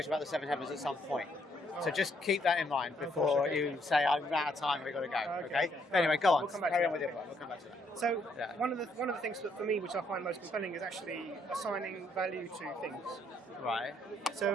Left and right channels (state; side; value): normal; both; correlation 0.71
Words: about the seven heavens at some point. So just keep that in mind before you say I'm out of time. We've got to go. Okay. But anyway, go on. We'll come back Carry to on with that. it. We'll come back to that. So Yeah. one of the things that for me, which I find most compelling, is actually assigning value to things. Right.